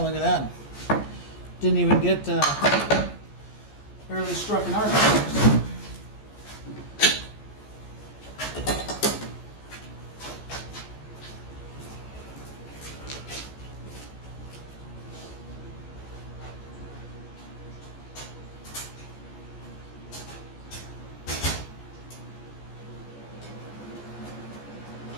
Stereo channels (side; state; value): right; late; 14 ms